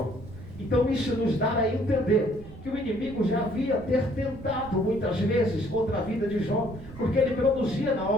Então isso nos dá a entender que o inimigo já havia tentado muitas vezes contra a vida de Jó, porque ele produzia na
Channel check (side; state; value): right; noise; rumble, 15 dB below the sound